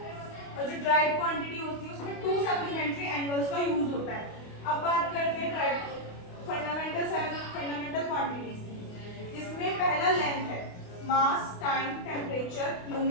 और जो डायरेक्ट क्वांटिटी होती है उसमें 2 सप्लीमेंट्री एंगल्स का यूज होता है. अब बात करते हैं डायरेक्ट फंडामेंटल क्वांटिटीज, जिसमें पहला लेंथ है, mass, time, temperature,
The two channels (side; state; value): right; late; 28 ms